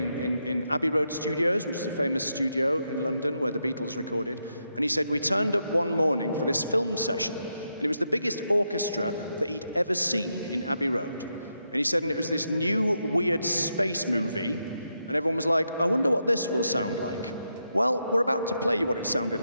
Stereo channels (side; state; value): both; inverted; correlation -0.83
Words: Abbey Road Studios, which is a famous studio in London where the Beatles recorded. And he said, we turned up one morning for this film session. And it was the biggest orchestra that he'd ever seen in Abbey Road. And he said, and it was this new, weird space movie. And everyone was like, I wonder what this will sound like. Well, we're about to play you what it sounded